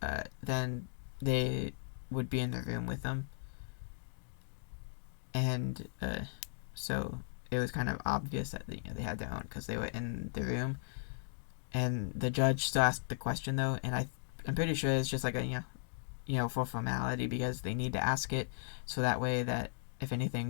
then they would be in the room with them, and so it was kind of obvious that they had their own because they were in the room. And the judge still asked the question though, and I'm pretty sure it's just like a for formality because they need to ask it so that way that if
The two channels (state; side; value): silent; right; digital silence